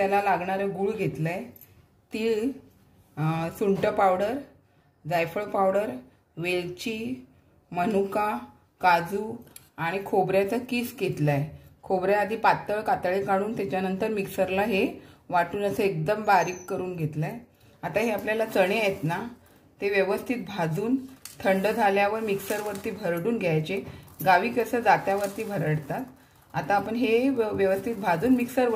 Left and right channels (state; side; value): identical; both; correlation 1.00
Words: लागणारे गूळ घेतलाय, तीळ, सुंठ पावडर, जायफळ पावडर, वेलची, मनुका, काजू आणि खोबऱ्याचा किस घेतलाय. खोबरे आधी पातळ कातळे काढून त्याच्यानंतर मिक्सरला हे वाटून असं एकदम बारीक करून घेतलाय. आता हे आपल्याला चणे आहेत ना, ते व्यवस्थित भाजून थंड झाल्यावर मिक्सरवरती भरडून घ्यायचे. गावी कसं जात्यावरती भरडतात. आता आपण हे व्यवस्थित भाजून